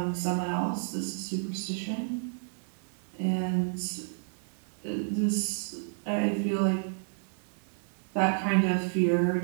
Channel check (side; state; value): left; silent; digital silence